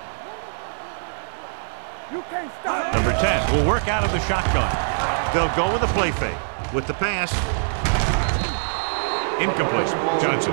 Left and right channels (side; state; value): left; silent; digital silence